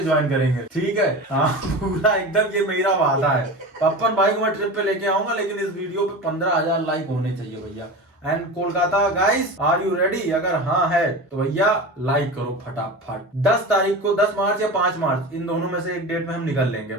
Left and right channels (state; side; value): normal; both; correlation 0.29